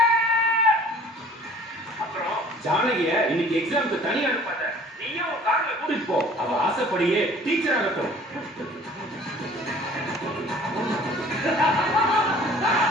அப்புறம் ஜானகிய இன்னைக்கு எக்ஸாமுக்கு தனியா அனுப்பாத. நீயும் உன் கார்ல கூட்டிட்டு போ. அவ ஆசைப்படியே டீச்சர் ஆகட்டும்.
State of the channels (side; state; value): both; normal; correlation 0.51